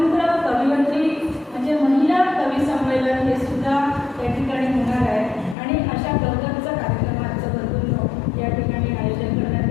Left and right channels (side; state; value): right; drops out; at 5.6 s